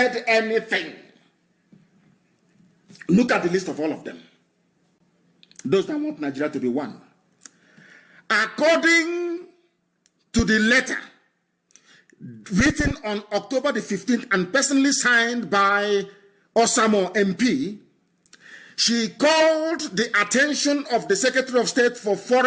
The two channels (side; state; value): both; identical; correlation 1.00